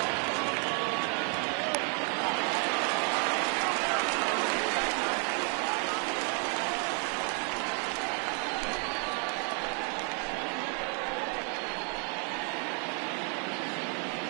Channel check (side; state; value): left; quieter; 39.9 dB